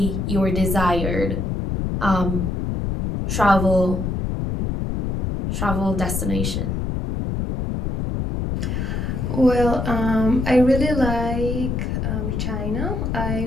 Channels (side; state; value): left; noise; rumble, 1 dB below the sound